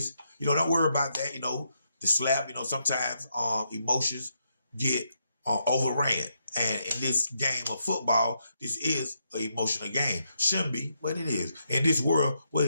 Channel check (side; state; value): both; inverted; correlation -0.80